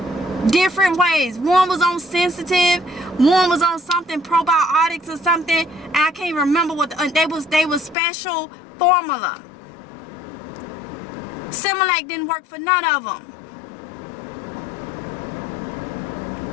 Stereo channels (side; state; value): right; drops out; at 8.0 s